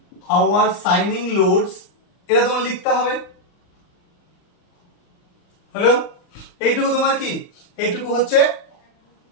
সাইনিং লোডস, এটা তোমার লিখতে হবে। হ্যালো, এইটুকু তোমার কি? এইটুকু হচ্ছে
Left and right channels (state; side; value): late; right; 39 ms